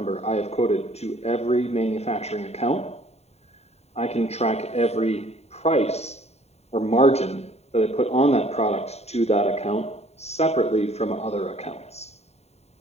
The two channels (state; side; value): late; right; 0.31 ms